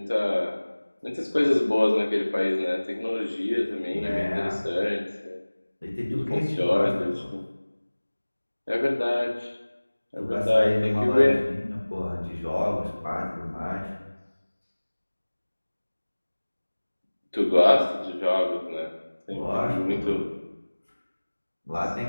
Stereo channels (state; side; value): inverted; both; correlation -1.00